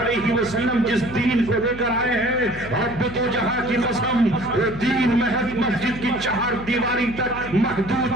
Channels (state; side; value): noise; left; hum, 13 dB below the sound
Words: وسلم جس دین کو لے کر آئے ہیں، رب دو جہاں کی قسم، وہ دین محض مسجد کی چہار دیواری تک